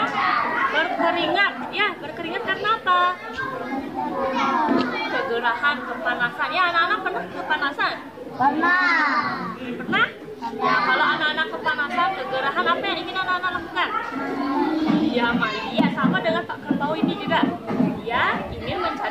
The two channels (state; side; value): identical; both; correlation 1.00